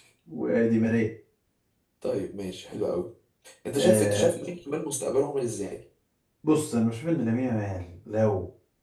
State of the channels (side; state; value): both; identical; correlation 1.00